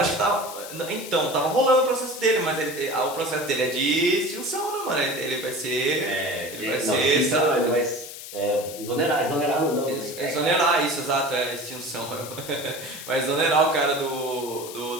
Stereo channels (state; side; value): noise; left; hiss, 12 dB below the sound